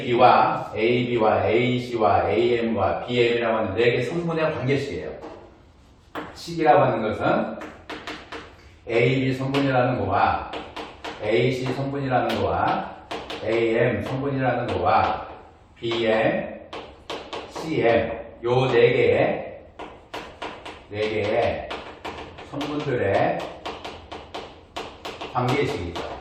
AC와 AM과 BM이라고 하는 4개 성분의 관계식이에요. 식이라고 하는 것은 AB 성분이라는 거와 AC 성분이라는 거와 AM 성분이라는 거와 BM, CM 요 4개의 성분들의 관계식이죠.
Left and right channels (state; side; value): identical; both; correlation 1.00